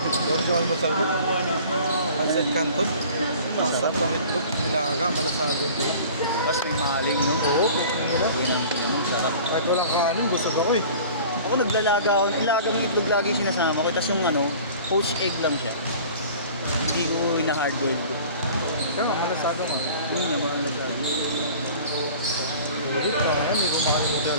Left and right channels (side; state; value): both; inverted; correlation -0.44